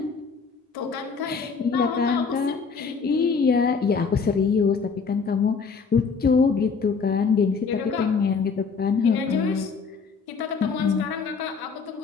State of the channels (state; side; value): quieter; right; 5.3 dB